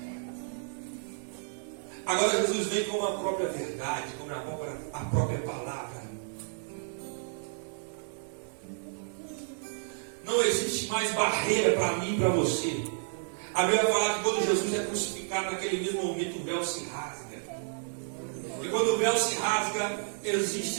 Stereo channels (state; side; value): silent; left; digital silence